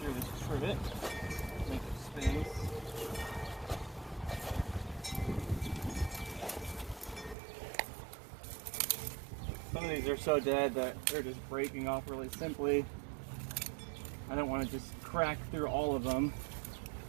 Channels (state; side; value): drops out; left; at 7.4 s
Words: this trivet, make it space. Some of these are so dead that they're just breaking off really simply. I don't want to just crack through all of them